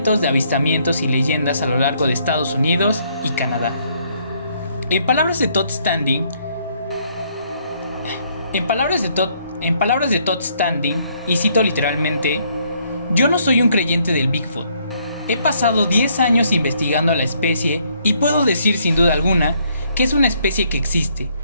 de avistamientos y leyendas a lo largo de Estados Unidos y Canadá. En palabras de Todd Standing, y cito literalmente: "Yo no soy un creyente del Bigfoot. He pasado 10 años investigando a la especie y puedo decir sin duda alguna que es una especie que existe.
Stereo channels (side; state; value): both; inverted; correlation -0.69